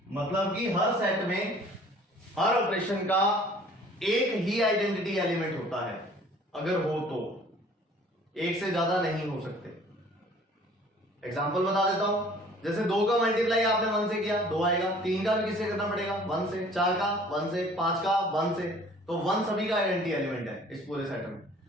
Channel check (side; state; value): both; normal; correlation 0.52